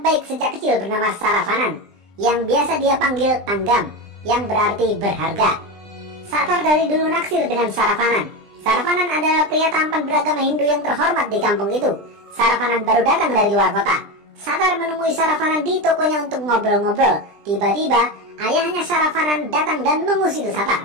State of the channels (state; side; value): late; left; 20 ms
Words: sejak kecil bernama Saravanan, yang biasa dia panggil Tanggam, yang berarti berharga. Satar dari dulu naksir dengan Saravanan. Saravanan adalah pria tampan beragama Hindu yang terhormat di kampung itu. Saravanan baru datang dari luar kota. Satar menemui Saravanan di tokonya untuk ngobrol-ngobrol. Tiba-tiba, ayahnya Saravanan datang dan mengusir